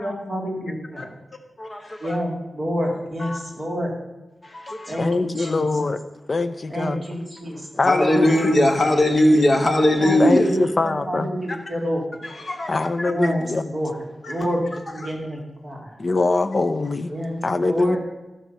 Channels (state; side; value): normal; both; correlation 0.93